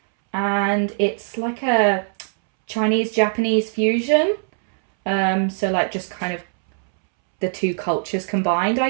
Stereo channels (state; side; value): silent; left; 65 dB below the other